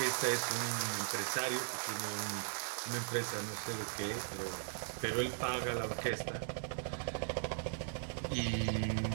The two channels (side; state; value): left; silent; digital silence